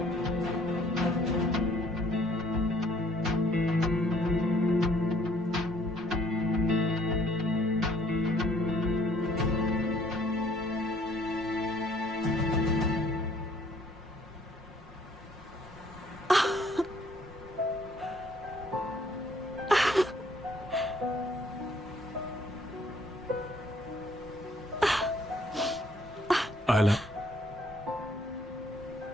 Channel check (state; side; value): normal; both; correlation 0.62